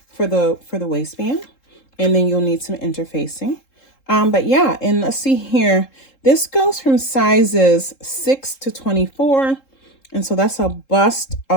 for the waistband, and then you'll need some interfacing. But yeah, and let's see here. This goes from sizes 6 to 24, and so that's a bust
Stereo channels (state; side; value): late; right; 3.7 ms